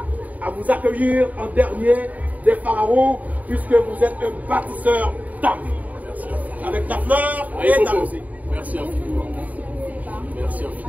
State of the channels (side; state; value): left; late; 0.074 ms